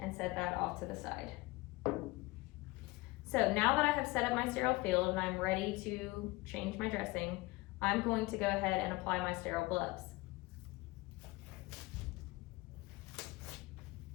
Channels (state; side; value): quieter; right; 22.1 dB